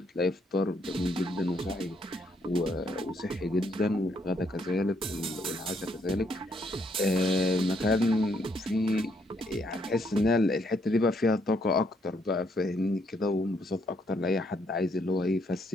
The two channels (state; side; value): normal; both; correlation 0.72